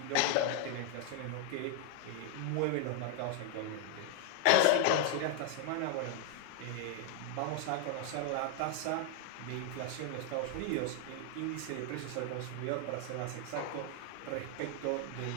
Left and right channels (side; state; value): both; different; correlation 0.00